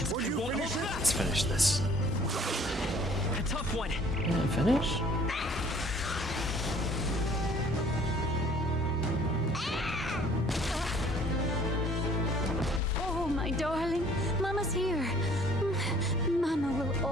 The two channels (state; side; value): normal; both; correlation 0.56